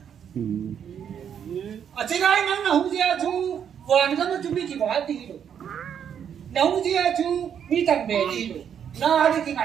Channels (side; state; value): left; quieter; 8.4 dB